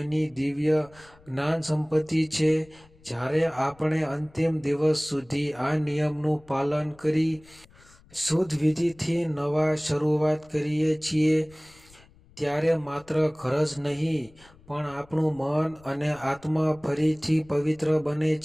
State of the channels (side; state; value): left; noise; rumble, 27 dB below the sound